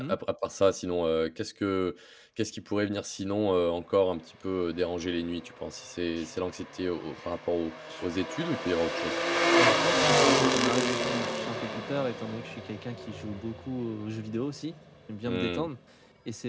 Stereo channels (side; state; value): both; identical; correlation 1.00